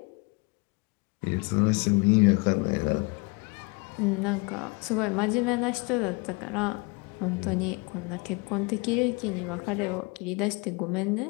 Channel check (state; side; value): quieter; right; 28.8 dB